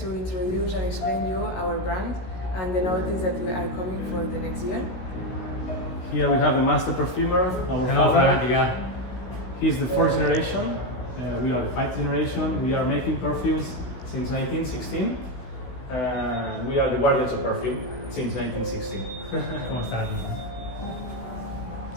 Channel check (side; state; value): right; late; 16 ms